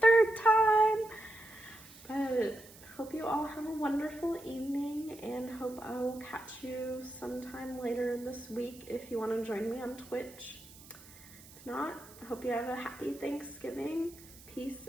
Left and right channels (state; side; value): noise; right; hiss, 20 dB below the sound